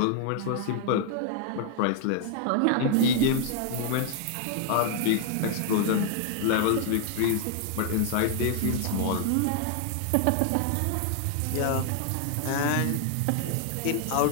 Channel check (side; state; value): both; different; correlation 0.00